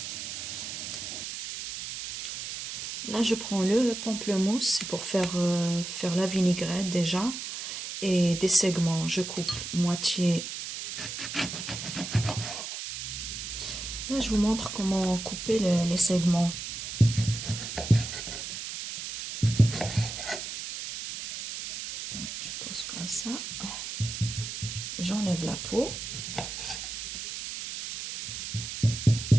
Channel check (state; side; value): noise; right; hiss, 7 dB below the sound